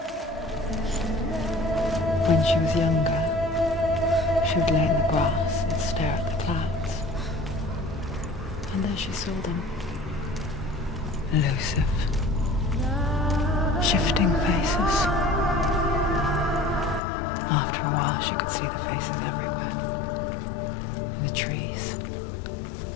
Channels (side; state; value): right; drops out; at 17.0 s